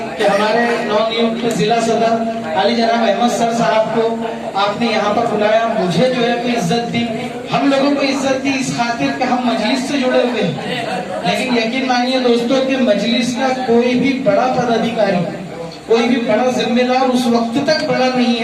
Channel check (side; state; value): both; identical; correlation 1.00